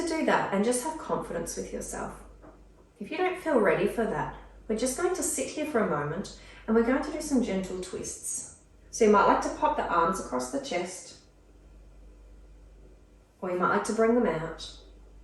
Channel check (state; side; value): identical; both; correlation 1.00